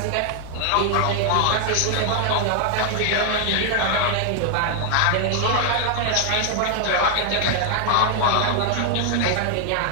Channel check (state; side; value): different; both; correlation 0.00